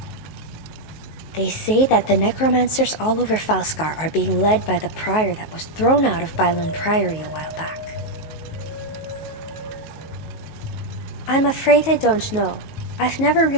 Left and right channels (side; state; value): right; late; 19 ms